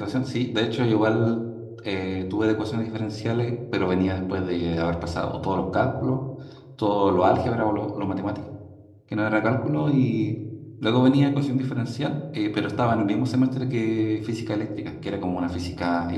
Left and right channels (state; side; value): identical; both; correlation 1.00